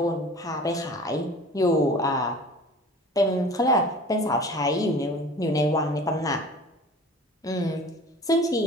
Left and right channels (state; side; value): normal; both; correlation 0.42